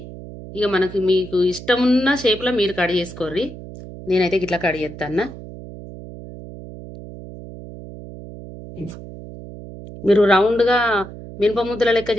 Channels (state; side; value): noise; right; hum, 14 dB below the sound